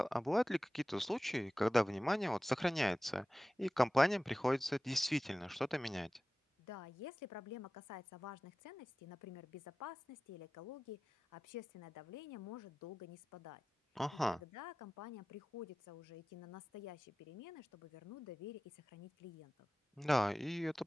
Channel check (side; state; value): both; normal; correlation 0.96